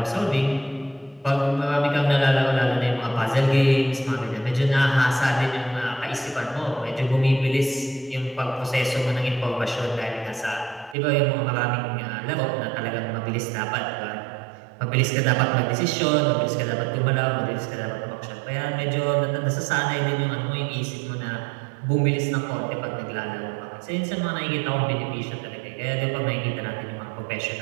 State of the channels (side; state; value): left; drops out; at 11.0 s